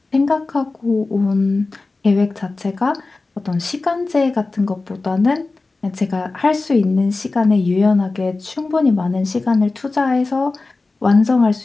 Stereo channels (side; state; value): right; quieter; 3.5 dB